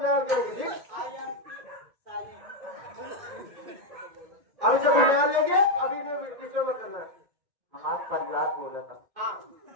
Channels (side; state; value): left; late; 1.9 ms